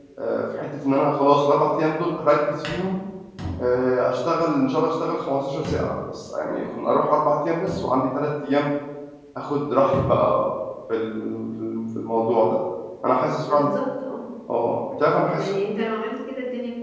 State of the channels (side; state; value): both; identical; correlation 1.00